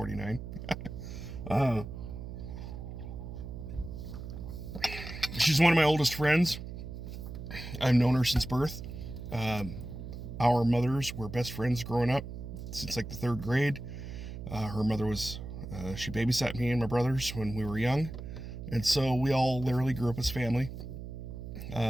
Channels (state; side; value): noise; right; hum, 9 dB below the sound